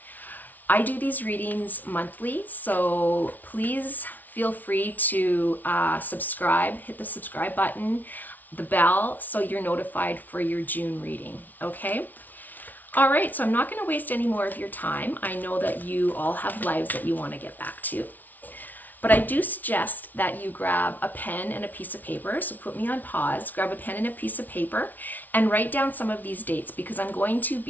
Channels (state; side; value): late; right; 0.081 ms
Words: I do these readings monthly, so please feel free to subscribe, hit the subscribe button, the bell, so you're notified for your June reading, okay? All right, so I'm not gonna waste any more of your time. I know that you all have lives that you wanna get back to, but I do suggest that you grab a pen and a piece of paper. So put me on pause, grab a pen and a piece of paper, and write down some of these dates, because I'm going to